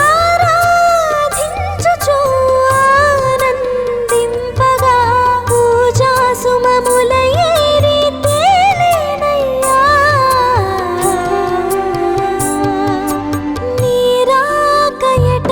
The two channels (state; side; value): identical; both; correlation 1.00